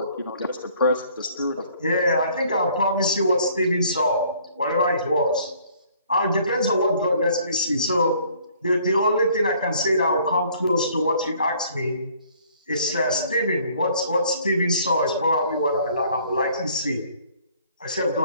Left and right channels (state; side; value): inverted; both; correlation -0.59